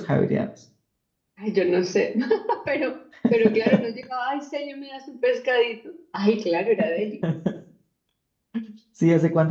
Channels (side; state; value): both; identical; correlation 1.00